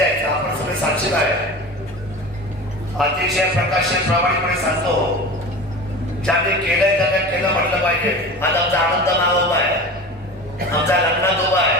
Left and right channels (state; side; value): normal; both; correlation 0.33